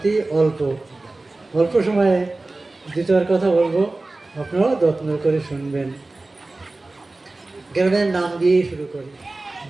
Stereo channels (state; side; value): quieter; left; 3.1 dB